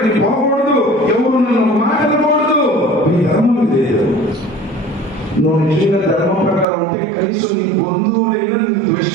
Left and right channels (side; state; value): left; drops out; at 6.7 s